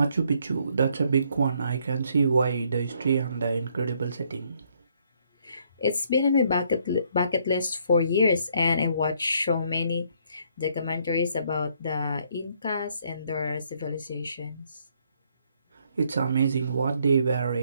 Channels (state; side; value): inverted; both; correlation -0.69